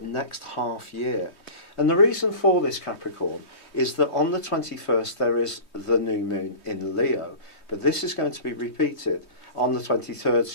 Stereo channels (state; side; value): late; right; 3.2 ms